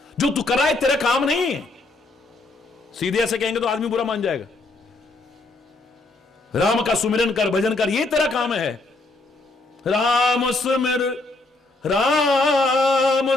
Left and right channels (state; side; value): quieter; right; 3.1 dB